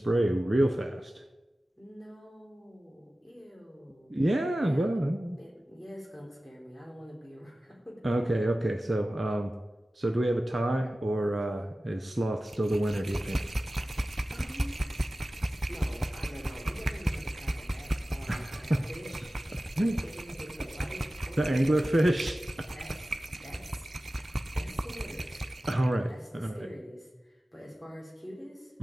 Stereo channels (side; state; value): both; normal; correlation 0.96